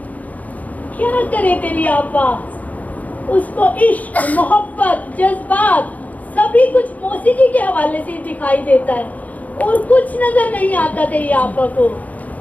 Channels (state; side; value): late; right; 0.075 ms